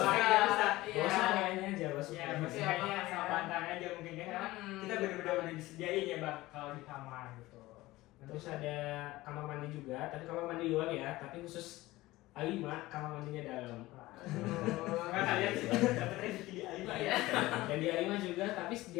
lemari nggak usah. Iya. Bawa semuanya aja, bawa Ya, semuanya. maksudnya Iya, sama iya. bantalnya aja mungkin ya, karena kita benar-benar udah disediain ya bang kalau di kamar gitu. Terus ada kamar mandi juga, tapi kamar mandi luar ya, tapi khusus A5, kamar mandinya dalam. Karena kalian sih dapat rezeki di A5 ya. Iya. Dan di A5 juga, tapi di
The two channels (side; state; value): right; quieter; 18.4 dB